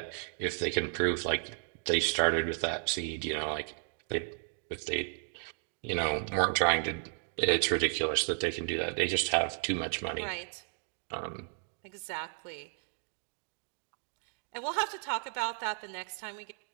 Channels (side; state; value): left; silent; 55 dB below the other